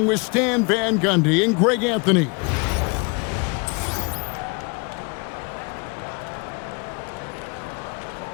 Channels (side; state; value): right; quieter; 31.8 dB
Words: with Stan Van Gundy and Greg Anthony.